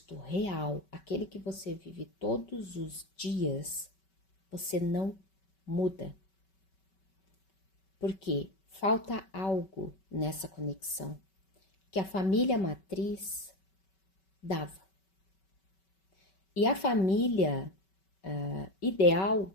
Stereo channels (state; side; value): late; right; 5.2 ms